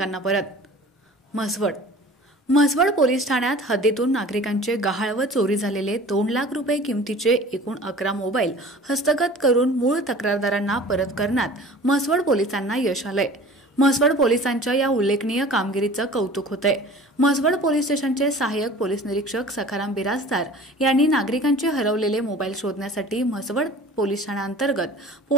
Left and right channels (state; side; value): normal; both; correlation 0.44